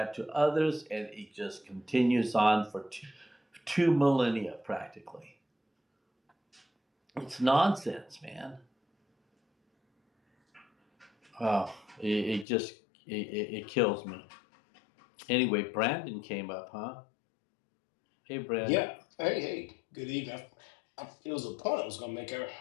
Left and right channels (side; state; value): right; drops out; at 12.5 s